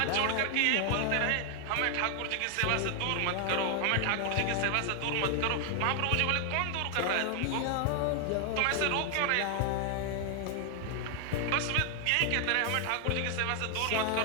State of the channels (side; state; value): both; different; correlation 0.00